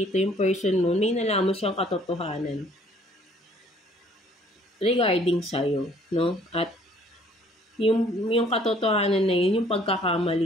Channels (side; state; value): both; normal; correlation 0.59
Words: yung person mo, may nalaman siyang katotohanan regarding sa'yo, no? At yung katotohanan na yun, yung